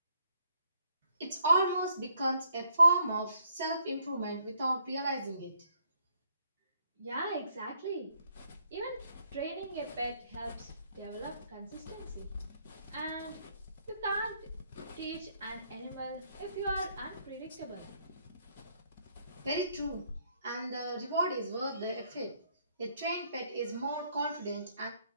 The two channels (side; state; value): both; inverted; correlation -0.70